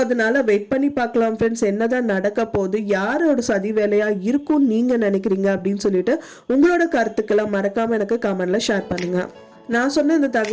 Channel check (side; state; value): both; identical; correlation 1.00